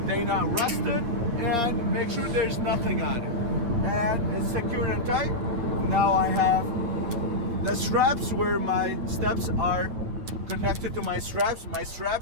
They're not rusted, and make sure there's nothing on it. And it's secure and tight. Now I have the straps where my steps are connected to my straps. My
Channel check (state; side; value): late; left; 9.2 ms